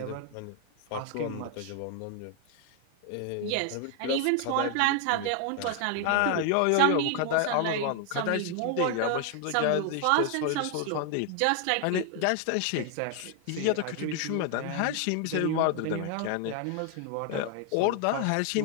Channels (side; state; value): both; different; correlation 0.00